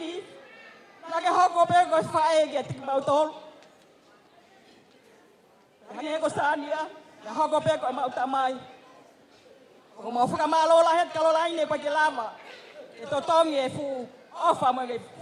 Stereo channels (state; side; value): identical; both; correlation 1.00